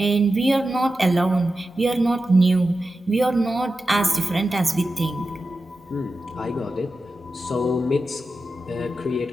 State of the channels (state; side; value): normal; both; correlation 0.92